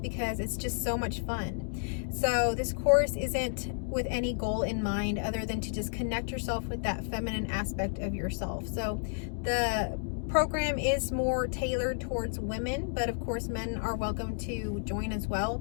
it's just so much fun. So this course isn't with any goal in mind other than to just connect yourself with that feminine aspect of yourself. So the program is more tailored towards women, but of course men are welcome to join as well.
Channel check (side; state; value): right; silent; digital silence